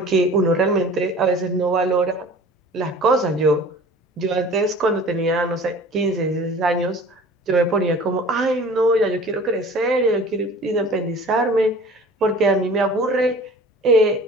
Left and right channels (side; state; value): both; normal; correlation 0.44